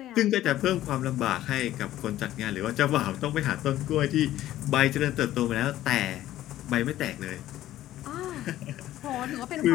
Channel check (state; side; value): quieter; right; 13.8 dB